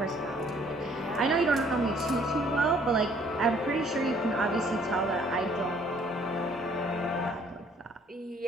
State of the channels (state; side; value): normal; both; correlation 0.61